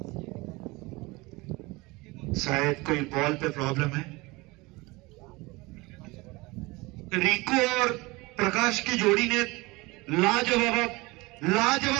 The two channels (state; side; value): quieter; left; 23.4 dB